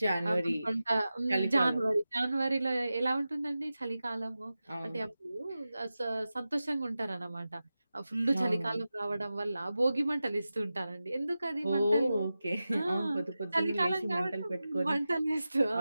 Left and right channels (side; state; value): both; inverted; correlation -0.94